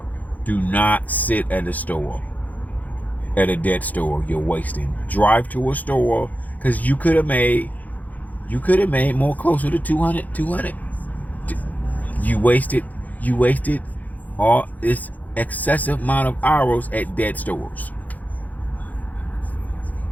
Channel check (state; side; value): late; right; 0.080 ms